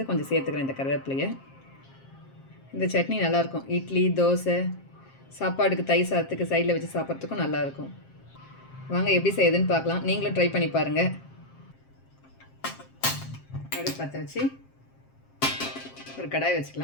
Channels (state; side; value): late; right; 7.5 ms